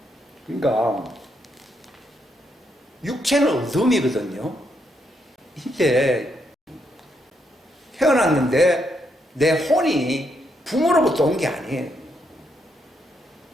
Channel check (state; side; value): normal; both; correlation 0.77